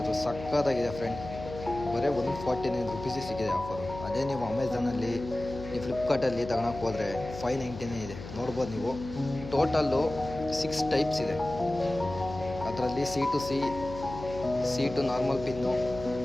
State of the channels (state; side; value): noise; left; hum, 11 dB below the sound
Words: ಸಕ್ಕತ್ತಾಗಿದೆ ಫ್ರೆಂಡ್. ಬರೀ 149 ರುಪೀಸಿಗೆ ಸಿಕ್ಕಿದೆ ಆಫರು. ಅದೇ ನೀವು ಅಮೆಝಾನಲ್ಲಿ, ನೀವು ಫ್ಲಿಪ್ಕಾರ್ಟಲ್ಲಿ ತಗೊಳಕ್ಕೆ ಹೋದರೆ 590 ಇದೆ. ನೋಡ್ಬೋದು ನೀವು. ಟೋಟಲ್ಲು 6 ಟೈಪ್ಸ್ ಇದೆ. ಅದರಲ್ಲಿ ಸಿ ಟು ನಾರ್ಮಲ್ ಪಿನ್ನು,